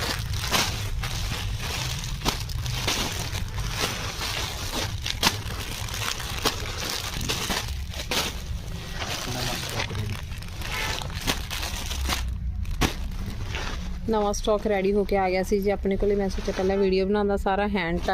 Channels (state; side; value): identical; both; correlation 1.00